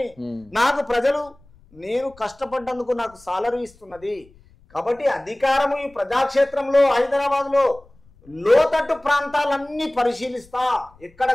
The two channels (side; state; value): left; noise; rumble, 28 dB below the sound